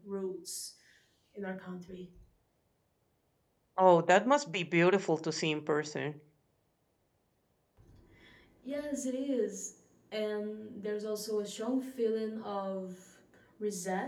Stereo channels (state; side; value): identical; both; correlation 1.00